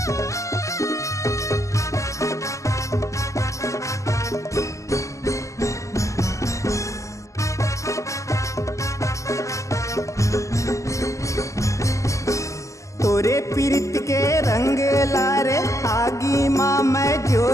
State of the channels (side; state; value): right; late; 0.15 ms